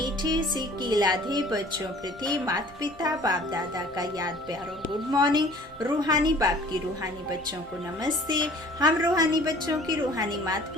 सी कीलाधी बच्चों प्रति माता पिता बाप दादा का याद प्यारो गुड मॉर्निंग। रूहानी बाप की रूहानी बच्चों को नमस्ते। हम रूहानी बच्चों की रूहानी माता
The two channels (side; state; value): both; normal; correlation 0.50